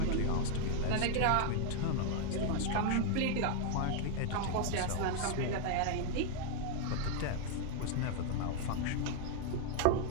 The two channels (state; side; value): different; both; correlation 0.01